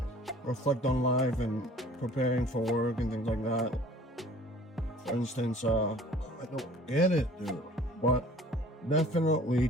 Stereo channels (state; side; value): normal; both; correlation 0.50